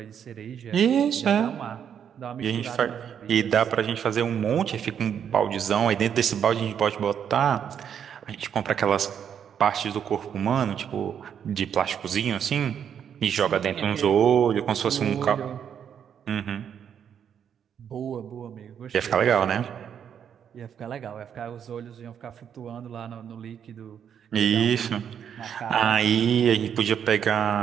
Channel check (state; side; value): quieter; left; 8.4 dB